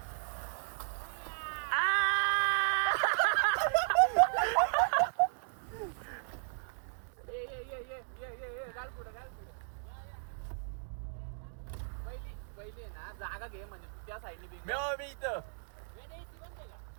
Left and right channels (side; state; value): left; silent; digital silence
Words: जागा घे म्हणजे त्या साईडने मी इथं